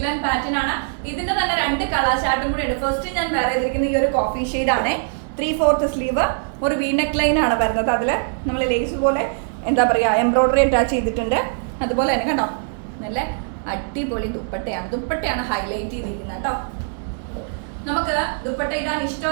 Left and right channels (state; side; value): silent; left; digital silence